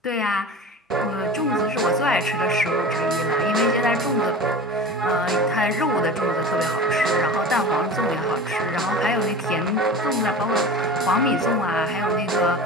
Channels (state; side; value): normal; both; correlation 0.35